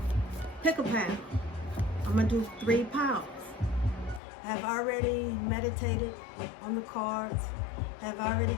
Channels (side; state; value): right; drops out; at 4.2 s